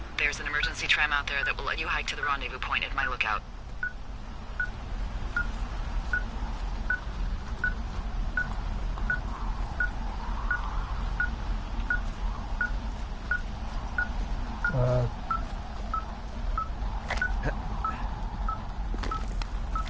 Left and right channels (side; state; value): both; identical; correlation 1.00